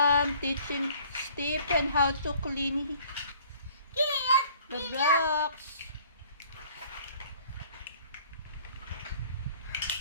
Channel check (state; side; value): inverted; both; correlation -0.55